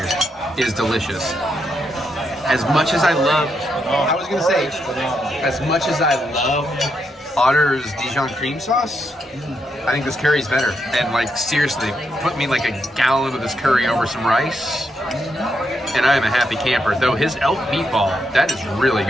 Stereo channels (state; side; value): normal; both; correlation 0.81